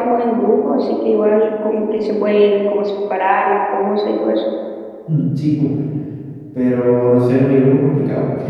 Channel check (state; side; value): identical; both; correlation 1.00